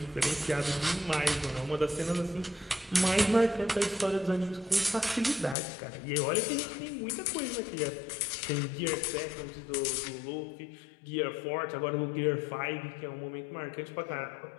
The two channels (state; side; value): drops out; right; at 5.6 s